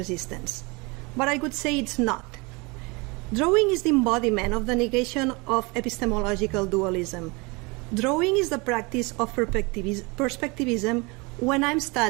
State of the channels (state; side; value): quieter; left; 27.4 dB